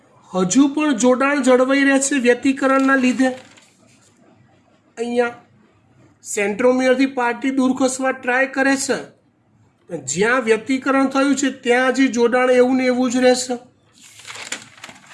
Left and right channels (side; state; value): both; identical; correlation 1.00